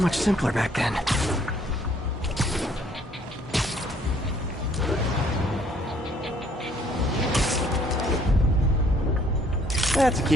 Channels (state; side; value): normal; both; correlation 0.62